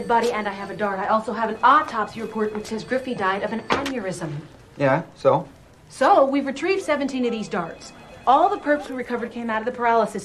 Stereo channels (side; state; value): both; identical; correlation 1.00